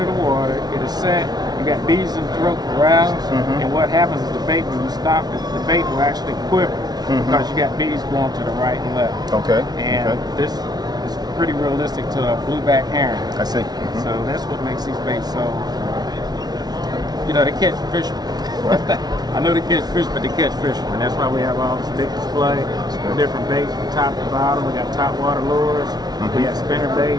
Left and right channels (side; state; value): left; late; 0.19 ms